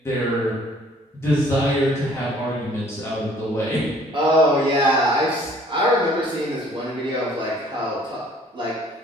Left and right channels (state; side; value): normal; both; correlation 0.56